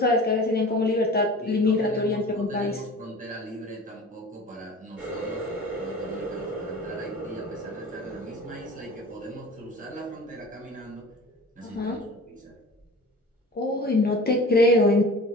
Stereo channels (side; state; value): both; normal; correlation 0.39